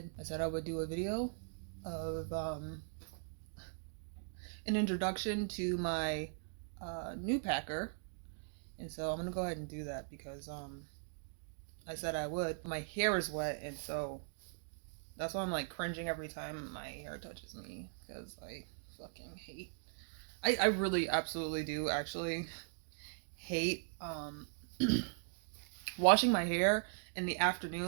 I said I would do a video of an introduction to my new packer, and so I'm gonna go ahead and do that because I said I would. My hair is wet, and so that's why I'm like cringing every time my hair touches me because I fucking hate. I really absolutely do actually hate washing my hair in the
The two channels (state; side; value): silent; left; digital silence